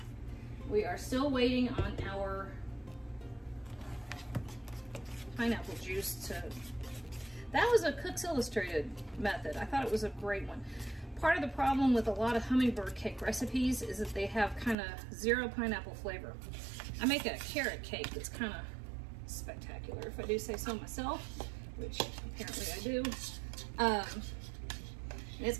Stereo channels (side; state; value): left; drops out; at 14.8 s